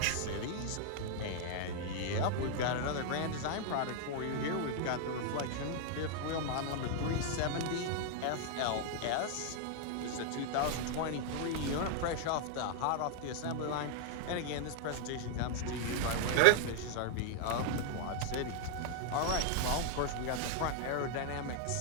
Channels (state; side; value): different; both; correlation 0.00